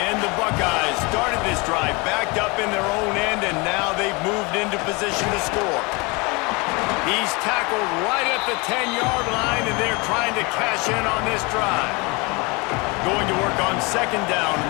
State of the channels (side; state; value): right; quieter; 27.6 dB